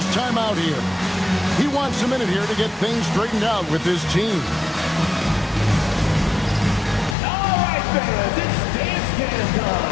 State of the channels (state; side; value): drops out; right; at 7.2 s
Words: timeout here. He wants a minute here to get things straightened out with his team. All right, fans, it's dance can